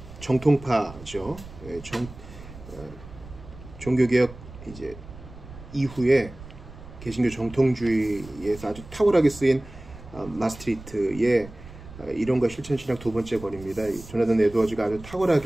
정통파죠. 종교개혁 이제 이후에 개신교 정통주의에서 아주 탁월하게 쓰인 마스트리트의 이론과 실천신학 2번째 권입니다. 조나단 에드워즈가 아주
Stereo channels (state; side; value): noise; right; rumble, 16 dB below the sound